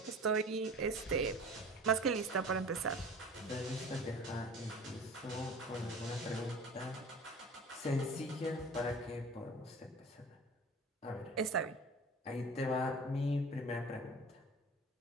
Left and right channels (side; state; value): both; normal; correlation 0.40